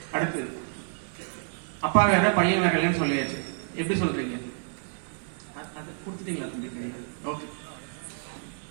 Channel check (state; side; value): silent; left; digital silence